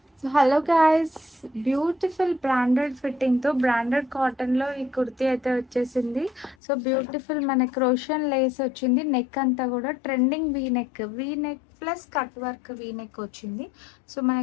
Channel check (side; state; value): right; drops out; at 6.6 s